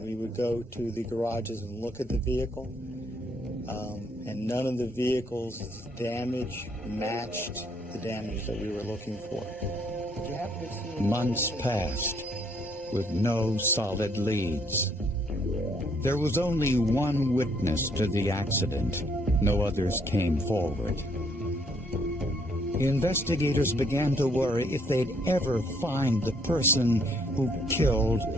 we would go to the garages and look at the vehicle. And none of the vehicles' damage matched the damage that we were looking for. Did you happen to see? Months passed with no solid leads. There was only one witness to the accident. No others came forward. Investigators began to worry if they'd ever find the person who killed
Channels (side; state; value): both; normal; correlation 0.68